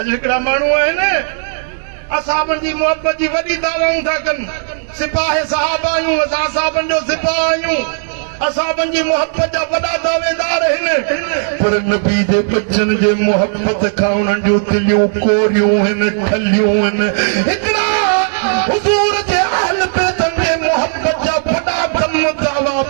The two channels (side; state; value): left; silent; 57 dB below the other